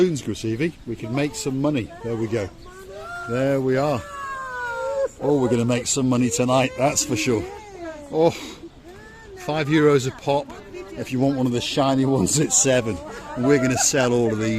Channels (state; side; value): identical; both; correlation 1.00